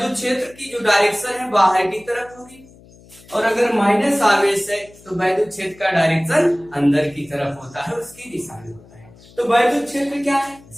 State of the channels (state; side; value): noise; left; hum, 24 dB below the sound